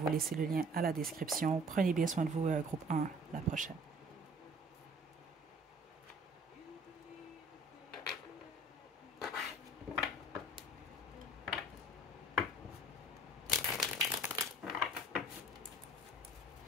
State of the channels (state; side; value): normal; both; correlation 0.51